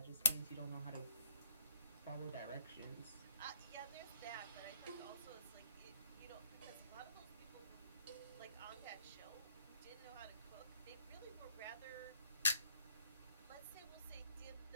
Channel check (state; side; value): inverted; both; correlation -0.67